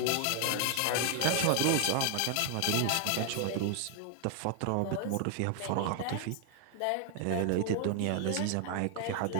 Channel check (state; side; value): different; both; correlation 0.00